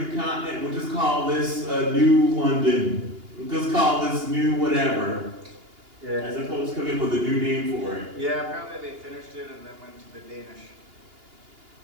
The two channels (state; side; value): late; left; 2.8 ms